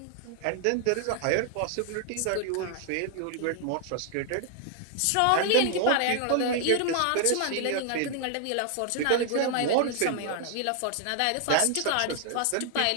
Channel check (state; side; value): different; both; correlation 0.00